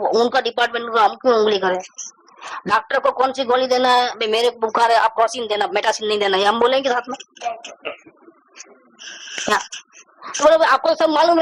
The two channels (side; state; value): both; identical; correlation 1.00